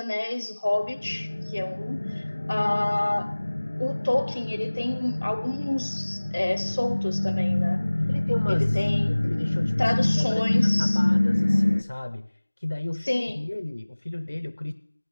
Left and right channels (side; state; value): both; inverted; correlation -1.00